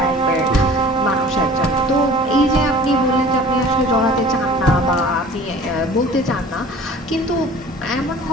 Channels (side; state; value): both; normal; correlation 0.45